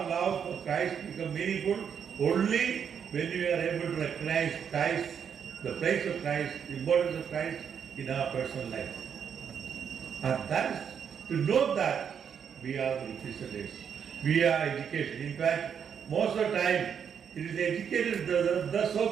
love for Christ become meaningful only when we are able to recognize Christ the place of Christ, the importance of Christ in our personal life. And that is, to know that we are the Christians. We are educated. In fact, most of the time, it is educated, the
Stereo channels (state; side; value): quieter; left; 7.6 dB